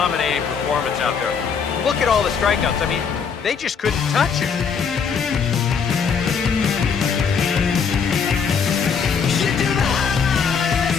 performance out there. Look at all the strikeouts. I mean, they just couldn't touch him.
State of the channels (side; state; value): right; quieter; 6.3 dB